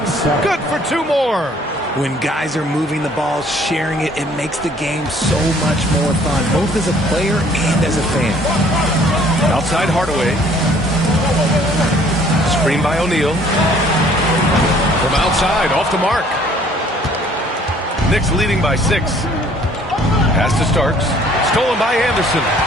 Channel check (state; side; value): normal; both; correlation 0.58